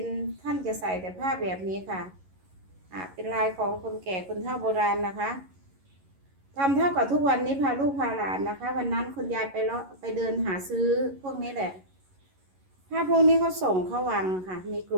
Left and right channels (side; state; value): left; late; 11 ms